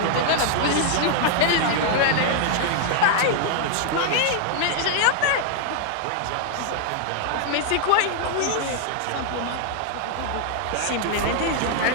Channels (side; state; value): both; different; correlation -0.01